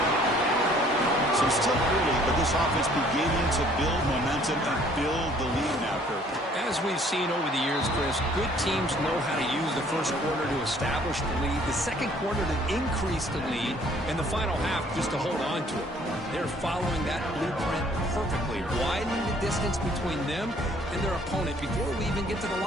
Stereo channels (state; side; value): normal; both; correlation 0.59